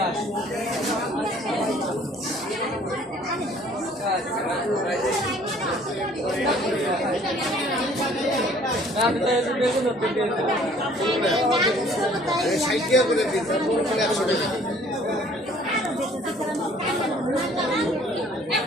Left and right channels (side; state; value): both; normal; correlation 0.56